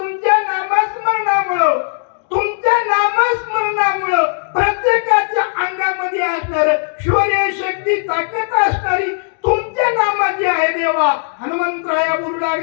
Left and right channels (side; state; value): right; silent; digital silence